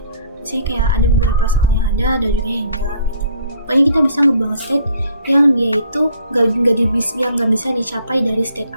Misalnya kayak ada beberapa soal yang ada juga yang enggak gitu. Pokoknya kita bisa ngebuang state yang dia itu nggak bisa dicapai dari state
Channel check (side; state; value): both; inverted; correlation -0.59